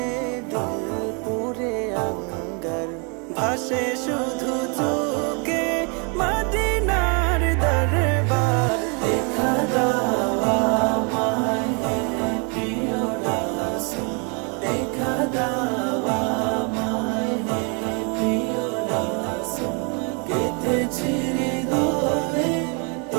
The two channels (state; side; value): quieter; left; 35.7 dB